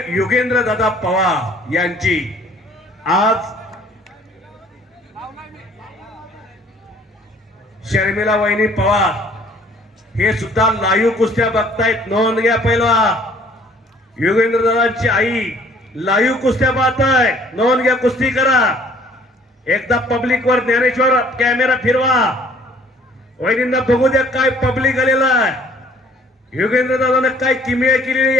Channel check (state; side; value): normal; both; correlation 0.56